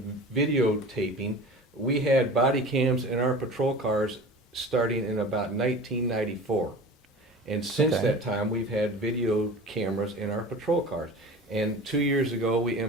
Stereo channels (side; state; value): both; normal; correlation 0.37